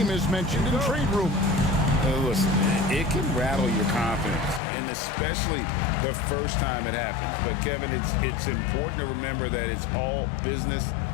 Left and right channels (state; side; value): drops out; right; at 4.6 s